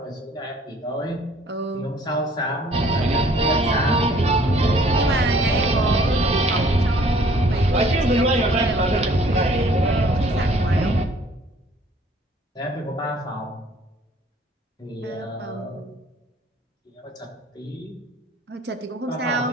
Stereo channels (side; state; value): both; normal; correlation 0.57